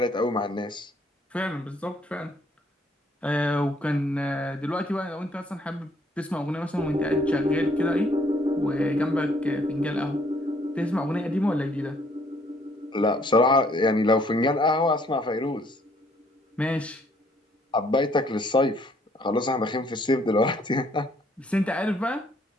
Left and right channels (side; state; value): both; normal; correlation 0.65